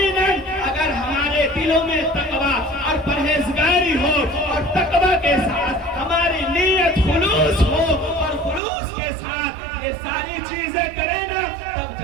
اگر ہمارے دلوں میں تقویٰ اور پرہیزگاری ہو اور تقویٰ کے ساتھ ہماری نیت خلوص ہو اور خلوص کے ساتھ یہ ساری چیزیں کریں نا، تب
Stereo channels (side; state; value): left; drops out; at 8.6 s